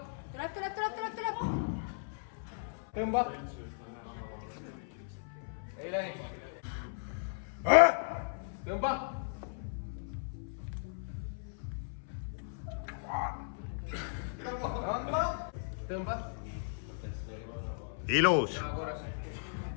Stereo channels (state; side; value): silent; right; 54 dB below the other